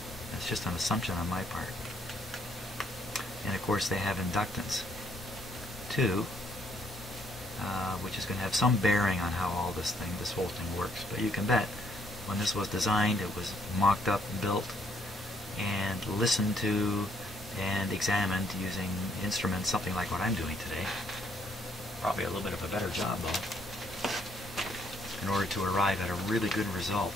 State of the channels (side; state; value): both; normal; correlation 0.69